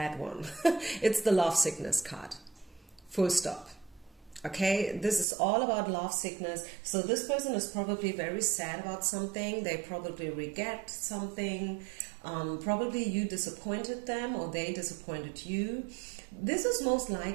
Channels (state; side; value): drops out; left; at 5.2 s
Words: one? It's the love sickness card. Full stop. Okay, this is all about love sickness. So this person is probably very sad about something. They probably regret something. Probably you disappointed them, or they disappointed you. This is most